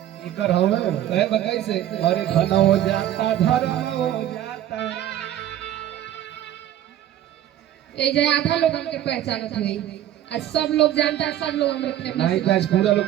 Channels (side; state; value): left; quieter; 12.0 dB